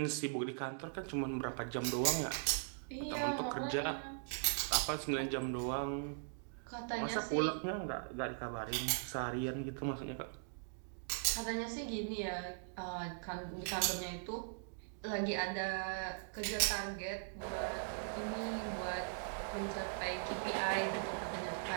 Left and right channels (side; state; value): left; silent; digital silence